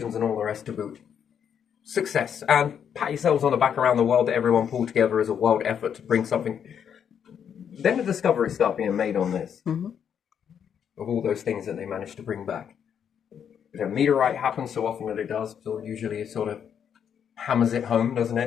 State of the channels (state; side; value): quieter; right; 8.2 dB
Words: and all the rest to boot. Success. And pat yourselves on the back around the world that everyone pulled together as a world effort to bring something. Then the discoveries start being made on this. Of all those things that they managed to bring back. If a meteorite happens so often that it does, so usually it sort of hammers it home, doesn't